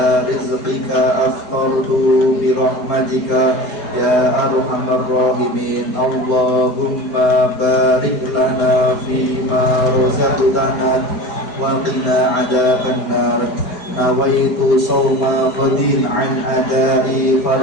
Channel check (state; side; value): late; right; 4.8 ms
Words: rizqika afqartu bi rahmatika ya arhamar rahimin. Allahumma barik lana fima razaqtana wa qina adzaban nar. Nawaitu sawma qadin an adai